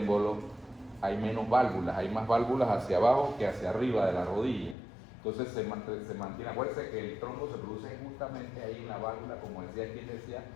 hay menos válvulas, hay más válvulas hacia abajo que hacia arriba de la rodilla. Entonces se mantiene. Acuérdense que el trombo se produce justamente ahí en la válvula, como decía quien decía,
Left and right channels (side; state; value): right; drops out; at 4.8 s